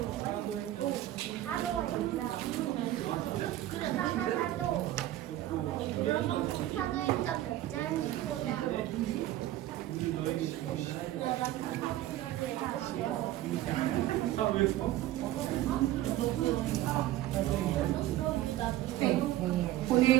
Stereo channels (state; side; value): quieter; left; 14.4 dB